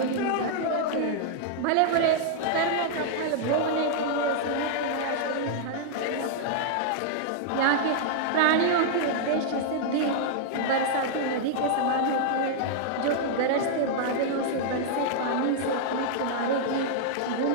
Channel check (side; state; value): both; different; correlation -0.01